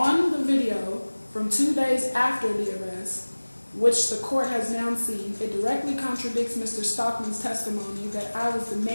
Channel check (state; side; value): inverted; both; correlation -1.00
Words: the video from 2 days after the arrest, which the court has now seen, it directly contradicts Mr. Stockman's testimony that I was